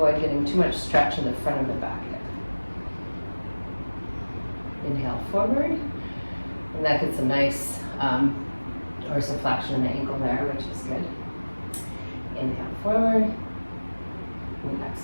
getting too much stretch in the front of the back hip. Inhale forward, and that gets a nice dorsiflexion in the ankle there, which is good. Inhale forward, and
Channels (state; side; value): inverted; both; correlation -1.00